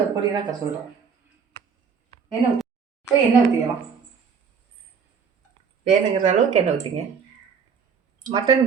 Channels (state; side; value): quieter; left; 6.3 dB